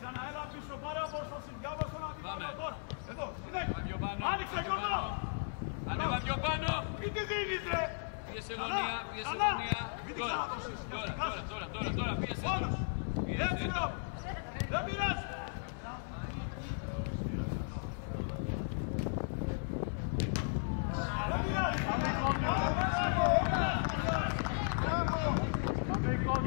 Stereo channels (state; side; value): silent; right; 54 dB below the other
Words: πίσω, πάρε απόσταση. Διάβασε τον αντίπαλο τώρα. Εδώ, Ανέβα πιο πάνω. άνοιξε, Γιώργο. Ανέβα πιο πάνω. Μην τη δίνεις, ρε. Πίεσε γωνία. Μην την ξαναδώσεις. Τώρα, πίεσε. Μόνος. Έτσι, μπρο. Δεν πειράζει. Δεν πειράζει. Πάμε